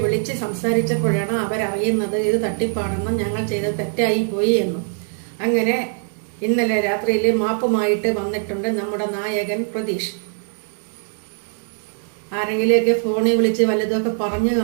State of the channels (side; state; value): left; silent; 57 dB below the other